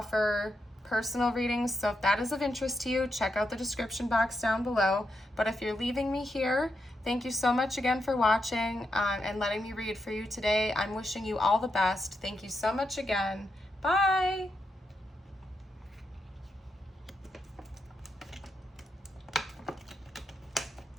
personal readings, so if that is of interest to you, check out the description box down below. But if you're leaving me here, thank you so much again for watching and letting me read for you today. I'm wishing you all the best. Thank you so much again. Bye.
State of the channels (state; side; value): normal; both; correlation 0.84